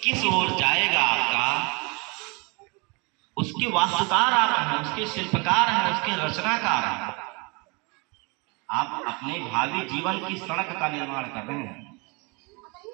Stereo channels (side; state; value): left; quieter; 29.7 dB